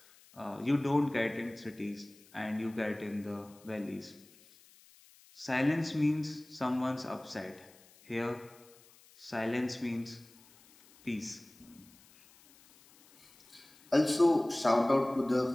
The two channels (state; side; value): noise; left; hiss, 26 dB below the sound